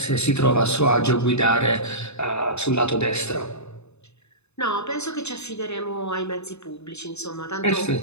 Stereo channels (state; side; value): late; right; 0.81 ms